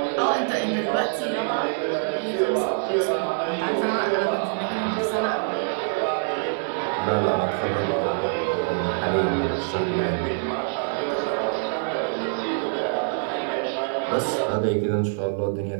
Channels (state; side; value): silent; left; digital silence